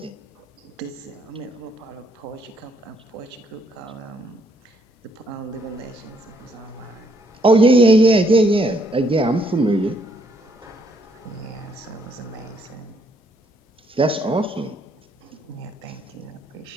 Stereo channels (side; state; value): both; normal; correlation 0.70